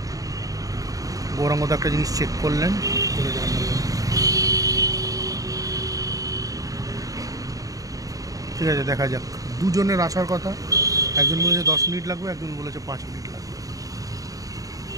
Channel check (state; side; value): late; left; 0.17 ms